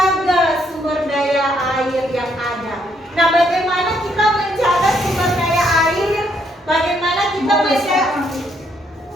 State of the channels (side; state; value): both; normal; correlation 0.72